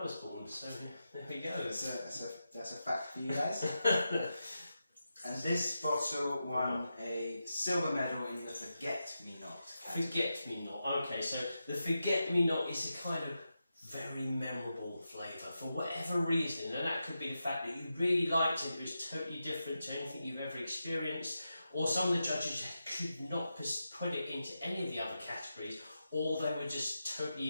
was born, so there we go. That's a fact for you guys. And this bottle won a silver medal in the Forget-Me-Not category. Forget-Me-Not, okay, so the Forget-Me-Not is a kind of very memorable flavour for whatever reason, and that could be the fact that you really liked it, it was totally different to anything you've ever experienced, or some of the judges could not put it into any of the other categories, or they were just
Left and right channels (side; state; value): both; inverted; correlation -0.89